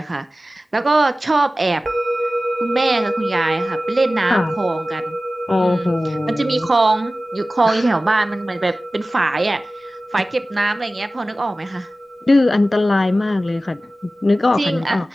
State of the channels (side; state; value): both; normal; correlation 0.96